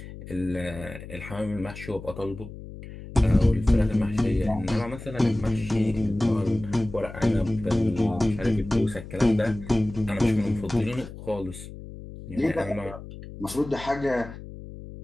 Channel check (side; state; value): left; noise; hum, 13 dB below the sound